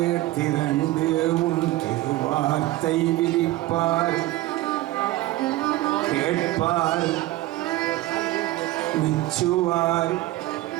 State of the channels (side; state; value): left; quieter; 17.1 dB